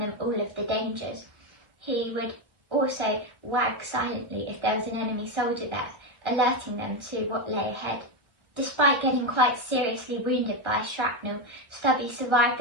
them all of the dangers. He would also wag silently if there was an enemy soldier there, alerting them to what lay ahead. Despite getting quite seriously wounded by shrapnel, Stubby survived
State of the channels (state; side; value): late; left; 1.1 ms